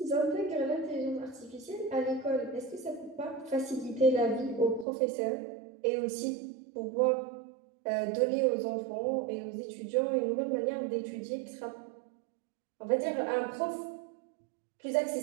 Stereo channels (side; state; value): left; drops out; at 4.9 s